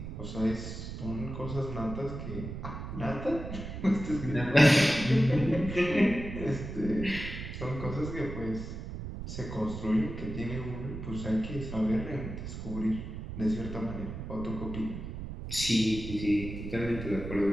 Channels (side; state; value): right; noise; rumble, 8 dB below the sound